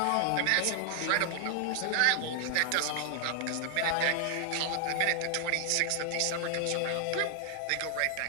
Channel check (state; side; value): different; both; correlation 0.00